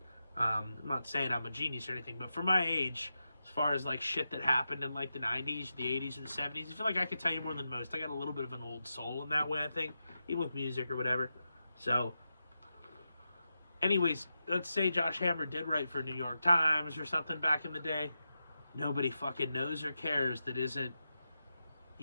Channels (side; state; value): both; inverted; correlation -0.89